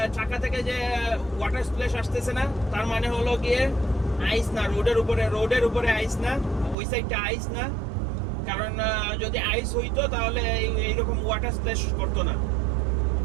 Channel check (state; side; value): drops out; left; at 6.8 s